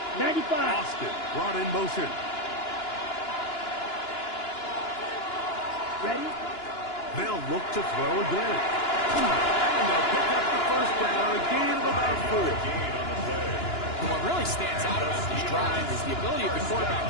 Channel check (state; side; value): late; right; 2.9 ms